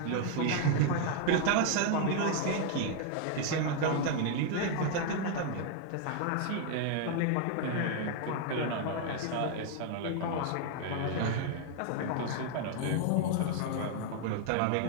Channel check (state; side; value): different; both; correlation 0.00